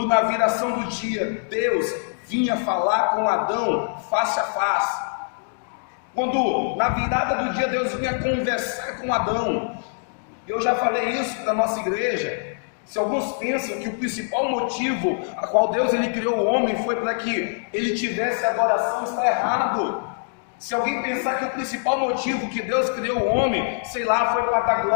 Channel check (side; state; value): right; silent; digital silence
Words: na viração do dia Deus vinha falar com Adão face a face, quando na virada do dia Deus vinha conversar com Adão. Eu já falei isso para a nossa igreja. Se alguns pensam que o principal motivo a qual Deus ele criou o homem foi para que ele tivesse adoração, está errado. Se alguém pensar que o principal motivo que Deus criou o homem, sei lá, foi para dar